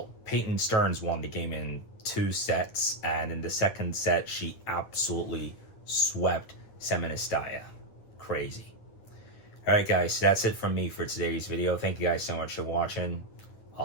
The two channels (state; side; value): late; right; 9.2 ms